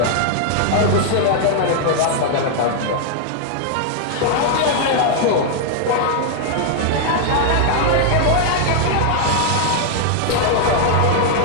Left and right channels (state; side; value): different; both; correlation 0.00